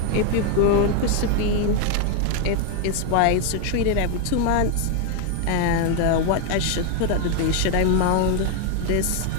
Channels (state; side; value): different; both; correlation 0.01